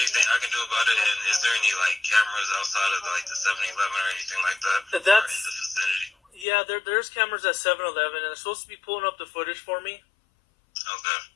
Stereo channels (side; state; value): right; drops out; at 6.5 s